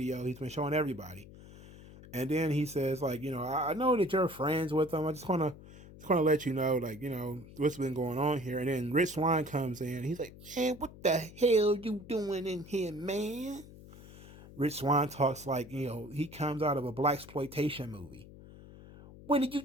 he's been showing everybody. And then he says, like, I know that you're friends with them. I just wanna let you know, like, what's been going on here. And then Rich Swann comes in. He's like, man, what the hell you doing in here, man? Rich Swann talks like, he comes out of a blaxploitation movie. What are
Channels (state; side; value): noise; left; hum, 18 dB below the sound